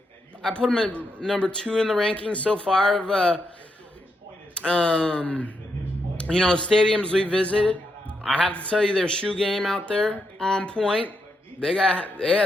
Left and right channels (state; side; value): normal; both; correlation 0.82